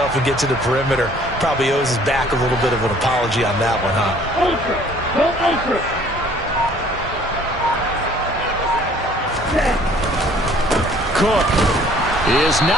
and get to the perimeter. Probably owes his back a little bit of an apology on that one, huh? Cook is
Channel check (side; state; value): both; normal; correlation 0.56